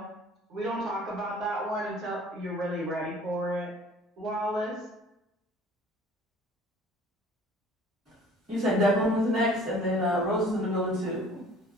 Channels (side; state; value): both; normal; correlation 0.50